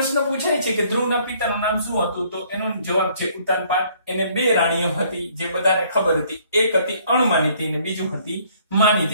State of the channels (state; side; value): inverted; both; correlation -0.62